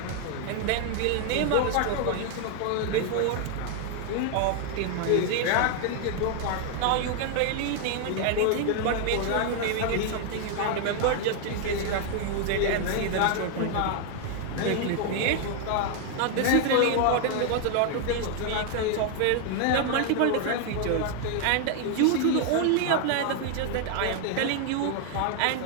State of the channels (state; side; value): different; both; correlation 0.00